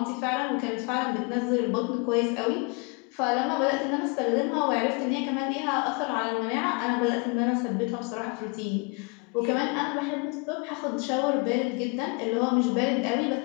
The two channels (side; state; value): right; quieter; 30.5 dB